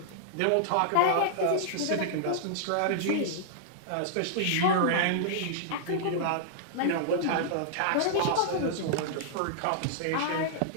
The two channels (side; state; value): both; different; correlation -0.01